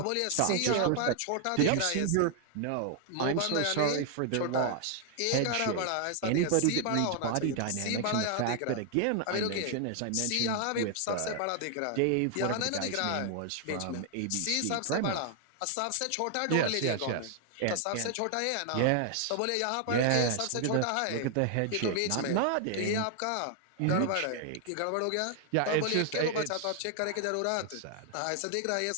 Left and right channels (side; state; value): both; different; correlation 0.00